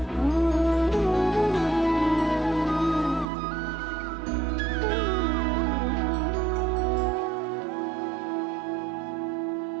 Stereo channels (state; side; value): drops out; left; at 3.2 s